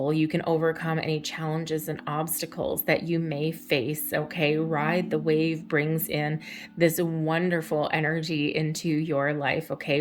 You can overcome any challenges and obstacles that you may face. Okay, ride the wave brings in this wonderful energy into your life. Okay,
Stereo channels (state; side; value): identical; both; correlation 1.00